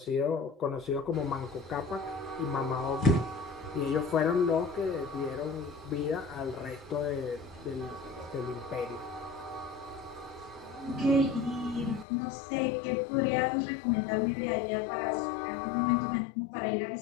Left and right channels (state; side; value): drops out; right; at 12.1 s